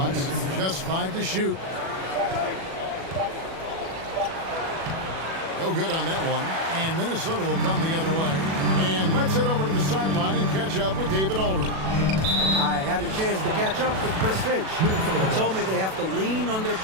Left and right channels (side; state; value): left; late; 37 ms